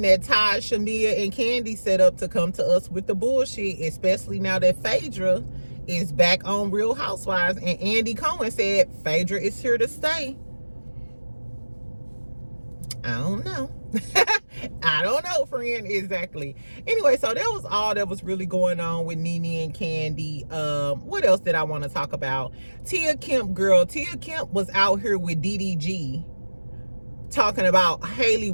that Todd, Shamea, and Kandi set up to come to us with the bullshit, especially now that Phaedra is back on Real Housewives, and Andy Cohen said Phaedra is here to stay. I don't know. I don't know, friend, exactly. Anyway, so that was all that was really going on with Nene and Kandi. What else did I want to talk about? Tia Kemp, girl. Tia Kemp was out here with DDG talking about Haley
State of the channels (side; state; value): both; inverted; correlation -1.00